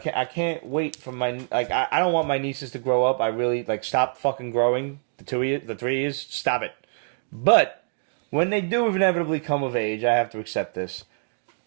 wait for my I don't want my nieces to grow up. I really stop fucking growing. The 3 years, stop it. But when they do inevitably come of age, I have to accept this.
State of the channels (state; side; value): silent; left; digital silence